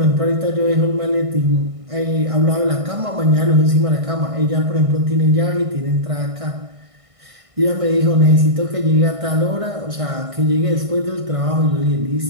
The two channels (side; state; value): left; late; 1.5 ms